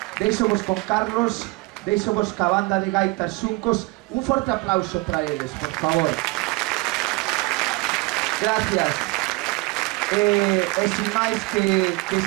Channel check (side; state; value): left; quieter; 23.6 dB